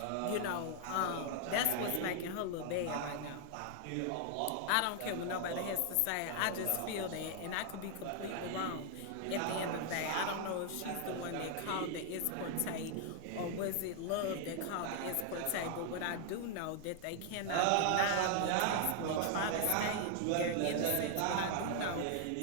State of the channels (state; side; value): different; both; correlation 0.00